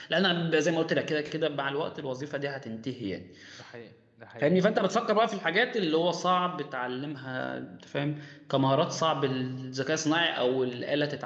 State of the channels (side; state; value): both; identical; correlation 1.00